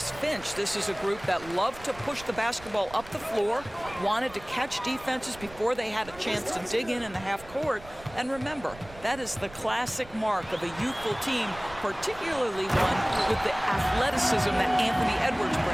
Finch. This is a group that loved to push the basketball up the floor, wanted to catch defenses before they had a chance to dig in the half court. And remember, that is the classic mark of a youthful team, particularly one with the athleticism that Anthony Edwards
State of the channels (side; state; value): right; noise; rumble, 19 dB below the sound